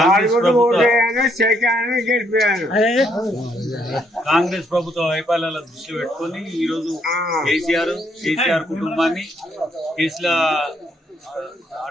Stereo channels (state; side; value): normal; both; correlation 0.71